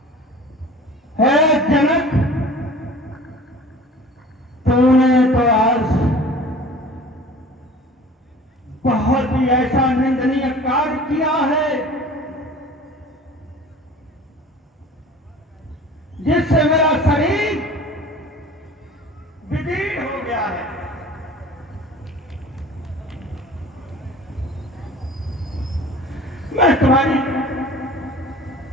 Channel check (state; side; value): normal; both; correlation 0.43